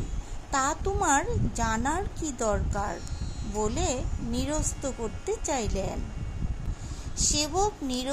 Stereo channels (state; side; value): identical; both; correlation 1.00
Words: তা তোমার জানার কি দরকার, বলে নিরস্ত করতে চাইলেন। সেবক